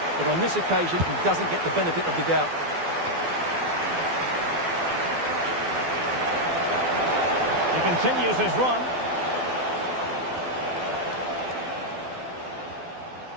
But on this occasion, he doesn't get the benefit of the doubt. He continues his run.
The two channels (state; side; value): late; left; 12 ms